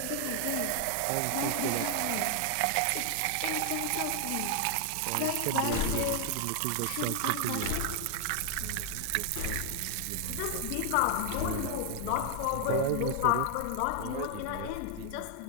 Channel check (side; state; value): both; different; correlation 0.00